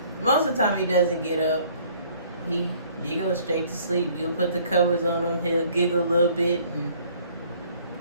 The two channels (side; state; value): both; inverted; correlation -0.58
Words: most of the time he doesn't get up. He goes straight to sleep. You'll put the covers on him, he'll giggle a little bit, and